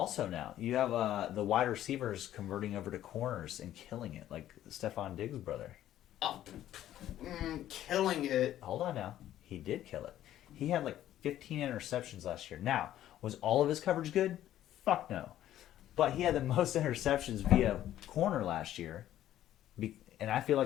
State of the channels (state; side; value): quieter; right; 12.5 dB